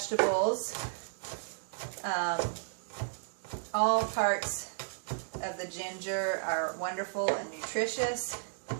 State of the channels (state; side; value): silent; left; digital silence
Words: All parts of the ginger are wonderful and nutritious.